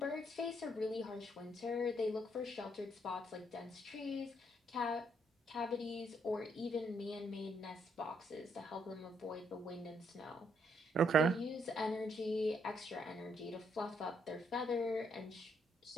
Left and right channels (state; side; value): normal; both; correlation 0.73